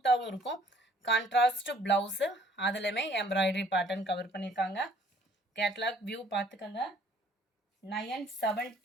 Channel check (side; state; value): both; normal; correlation 0.59